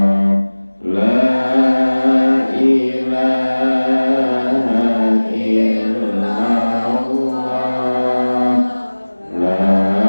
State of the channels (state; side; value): inverted; both; correlation -1.00